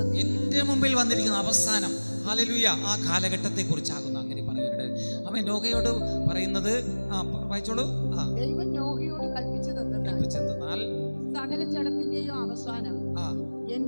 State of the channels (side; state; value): both; inverted; correlation -1.00